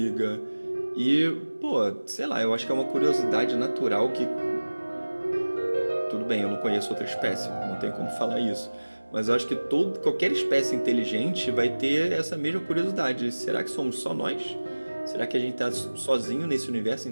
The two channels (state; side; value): inverted; both; correlation -1.00